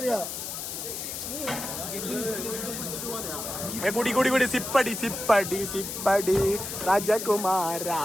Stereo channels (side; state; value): left; noise; hiss, 6 dB below the sound